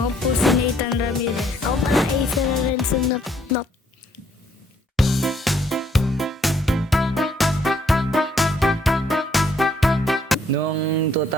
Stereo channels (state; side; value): normal; both; correlation 0.67